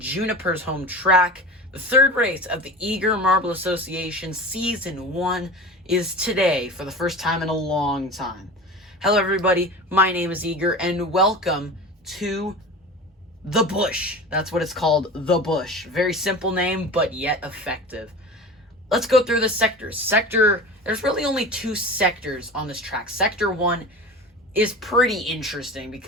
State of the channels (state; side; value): normal; both; correlation 0.33